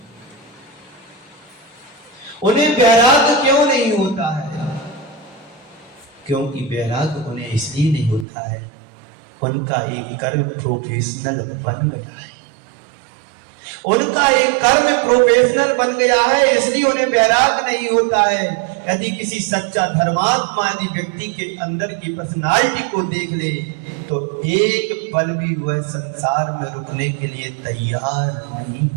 उन्हें वैराग्य क्यों नहीं होता है? क्योंकि वैराग्य उन्हें इसलिए नहीं होता है, उनका एक कर्म प्रोफेशनल बन गया है। उनका एक कर्म प्रोफेशनल बन गया है, इसलिए उन्हें वैराग्य नहीं होता है। यदि किसी सच्चा धर्मात्मा यदि व्यक्ति के अंदर की पर्सनालिटी को देख ले तो एक पल भी वह संसार में रुकने के लिए तैयार नहीं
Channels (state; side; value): drops out; left; at 8.2 s